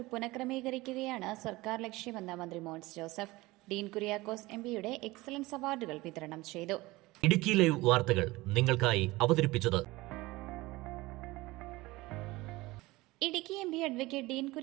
പുനഃക്രമീകരിക്കുകയാണ് സർക്കാർ ലക്ഷ്യമെന്ന് മന്ത്രി മോൻസ് ജോസഫ്. ഡീൻ കുര്യാക്കോസ് എംപിയുടെ എക്സലൻസ് അവാർഡുകൾ വിതരണം ചെയ്തു. ഇടുക്കി ലൈവ് വാർത്തകൾ നിങ്ങൾക്കായി അവതരിപ്പിച്ചത് ഇടുക്കി എംപി അഡ്വക്കേറ്റ് ഡീൻ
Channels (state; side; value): quieter; left; 20.4 dB